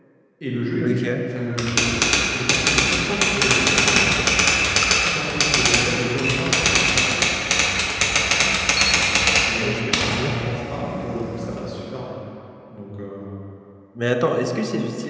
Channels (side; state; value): both; identical; correlation 1.00